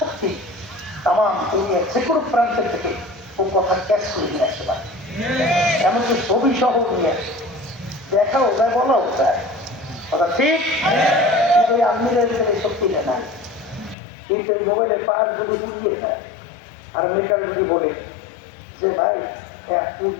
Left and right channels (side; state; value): right; drops out; at 14.0 s